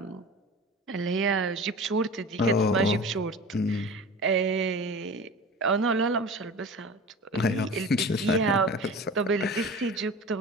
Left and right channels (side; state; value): both; normal; correlation 0.36